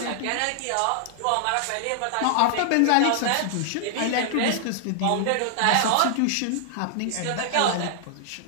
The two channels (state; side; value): different; both; correlation -0.01